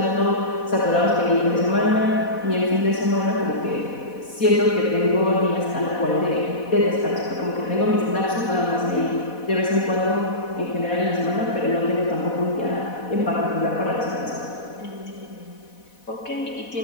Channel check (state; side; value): late; right; 4.1 ms